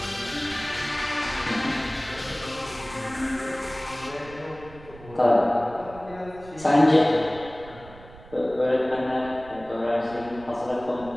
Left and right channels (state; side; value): noise; right; rumble, 19 dB below the sound